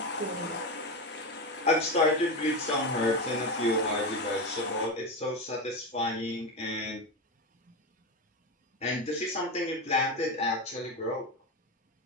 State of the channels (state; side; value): normal; both; correlation 0.17